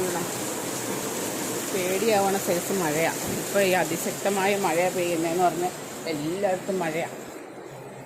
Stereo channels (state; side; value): identical; both; correlation 1.00